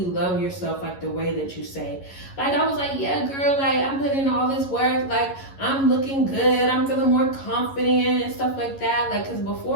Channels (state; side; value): late; right; 11 ms